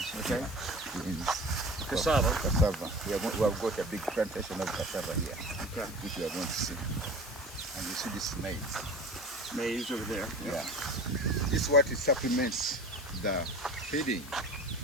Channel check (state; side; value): noise; left; hiss, 15 dB below the sound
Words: okay. Beans. Cassava. Cassava. We have got a big plantation of cassava here, Okay. which we are going to see. And you see this maize. Maize over there. Yeah. This is what it supplements the feeding.